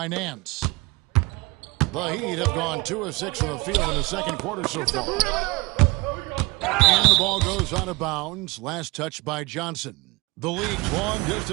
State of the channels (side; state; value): left; quieter; 24.2 dB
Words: Nance. The Heat have gone 2 of 6 from the field in the second quarter so far. And the ball goes out of bounds. Last touch by Johnson. The league's